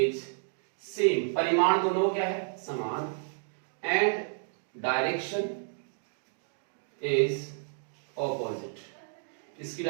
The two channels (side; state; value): left; silent; digital silence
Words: सेम, परिमाण दोनों क्या है समान, एंड डायरेक्शन इज ऑपोजिट, इसकी